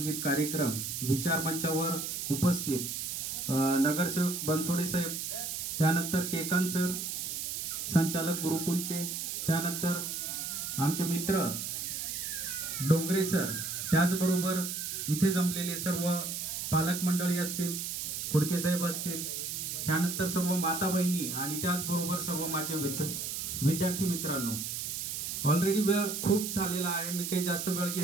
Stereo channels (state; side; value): noise; right; hiss, 4 dB below the sound